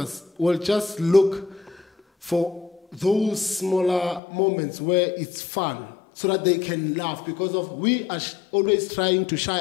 will just look for those smaller moments where it's fun, so that they can laugh, because of we are always trying to shy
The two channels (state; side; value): drops out; right; at 4.2 s